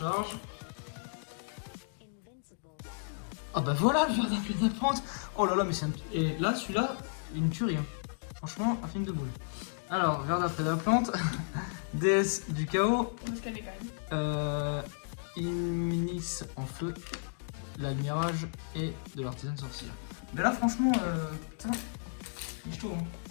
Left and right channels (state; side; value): silent; right; digital silence